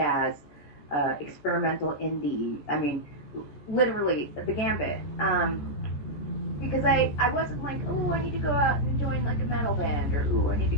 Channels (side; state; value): right; late; 14 ms